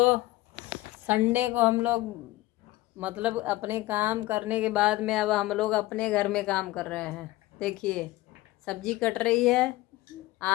संडे को हम लोग मतलब अपने काम करने के बाद में अब हम लोग अपने घर में काम कर रहे हैं। देखिए, सब्जी कट रही है,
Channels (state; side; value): quieter; right; 18.2 dB